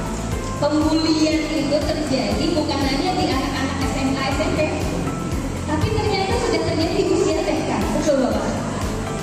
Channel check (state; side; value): identical; both; correlation 1.00